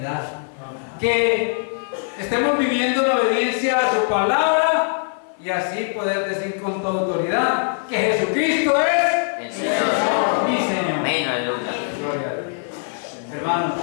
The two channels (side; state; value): right; silent; 58 dB below the other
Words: Que estemos viviendo en obediencia a su palabra y así poder decir con toda autoridad que Jesucristo es El Señor. mi Señor. Amén, aleluya. Gloria a Dios. Hermanos,